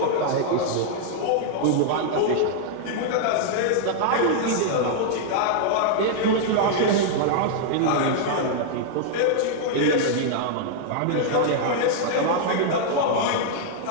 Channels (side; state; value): both; different; correlation -0.01